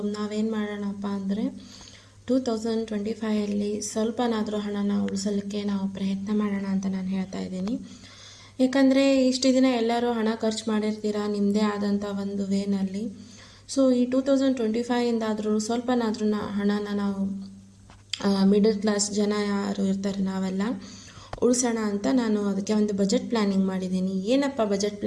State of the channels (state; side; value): identical; both; correlation 1.00